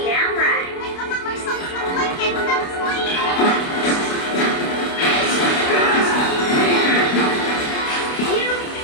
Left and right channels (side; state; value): right; late; 28 ms